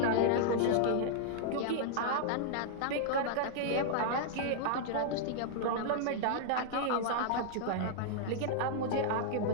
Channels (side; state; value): both; different; correlation -0.01